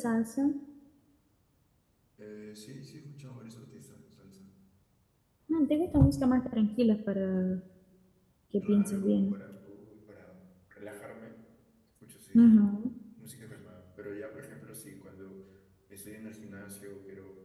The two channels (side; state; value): both; identical; correlation 1.00